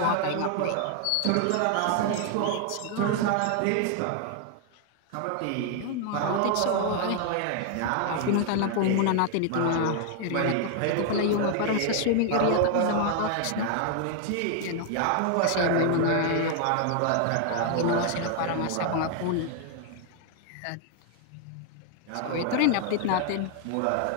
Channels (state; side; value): different; both; correlation 0.00